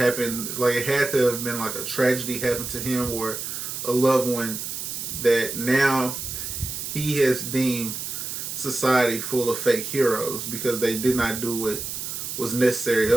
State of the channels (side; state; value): right; noise; hiss, 6 dB below the sound